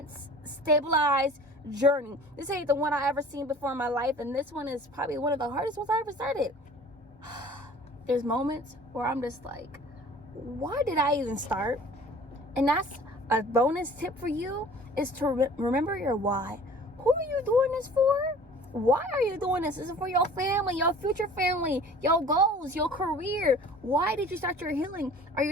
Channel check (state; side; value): normal; both; correlation 0.46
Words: stabilized journey. This ain't the one I ever seen before in my life, and this one is probably one of the hardest ones I ever started. There's moments where I'm just like, why did I even start? And that's a bonus tip for you, is to remember your why. Who are you doing this for? Why are you doing this? This is for your family, your future family, your goals, your career. Why did you start your healing? Are